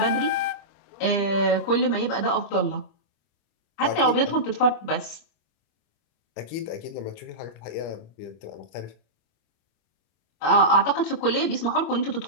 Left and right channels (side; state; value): right; late; 25 ms